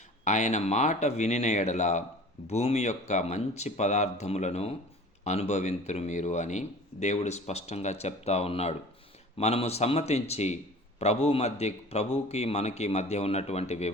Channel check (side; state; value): both; normal; correlation 0.43